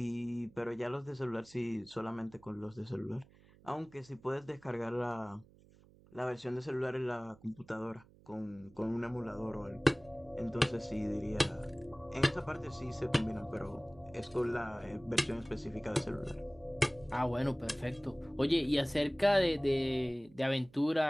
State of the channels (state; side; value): noise; right; hum, 25 dB below the sound